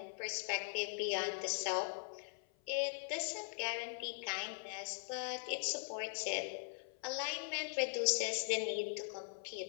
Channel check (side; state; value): right; silent; 50 dB below the other